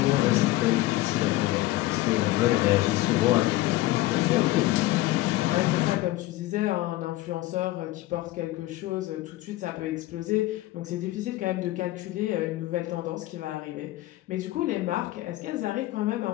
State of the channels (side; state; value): right; quieter; 17.2 dB